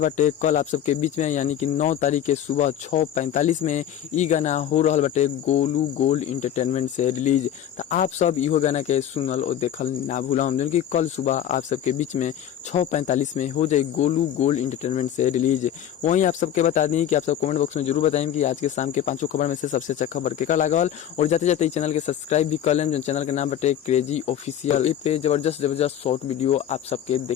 कल आप सबके बीच में, यानी कि 9 तारीख के सुबह 6:45 में ई गाना हो रहा बटे गोलू गोल्ड इंटरटेनमेंट से रिलीज। तो आप सब इहो गाना के सुनल और देखल ना भूलम जो कि कल सुबह आप सबके बीच में 6:45 में हो जाए गोलू गोल्ड इंटरटेनमेंट से रिलीज। वहीं आप सबके बता दी कि आप सब कमेंट बॉक्स में जरूर बताएं कि आज के शाम के 5 खबर में से सबसे अच्छा खबर के लागल। और जाते जाते चैनल के सब्सक्राइब भी कर लें जो चैनल के नाम बटे क्रेजी ऑफिशियल। पे जबरदस्त शॉर्ट वीडियो आप सबके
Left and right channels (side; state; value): right; quieter; 10.4 dB